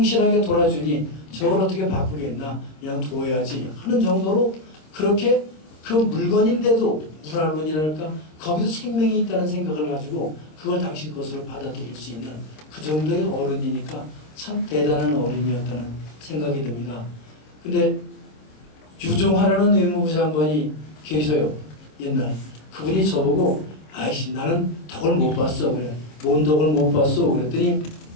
돌아주니 저걸 어떻게 바꾸겠나 그냥 둬야지 하는 정도로 그렇게 그 물건인데도 문화론이랄까 거기도 생명이 있다는 생각을 가지고 그걸 당신 것으로 받아들일 수 있는 그 정도의 어른이니까 참 대단한 어른이었다는 생각이 듭니다. 근데 유종하라는 외무부 장관이 계셔요. 옛날 그분이 저보고 아이씨 나는 덕을 못 봤어 그래. 뭔 덕을 못 봤어 그랬더니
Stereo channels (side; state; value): right; late; 26 ms